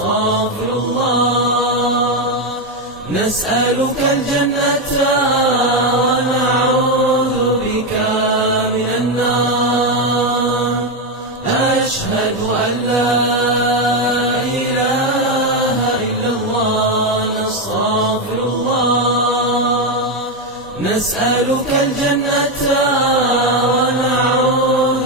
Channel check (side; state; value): both; normal; correlation 0.08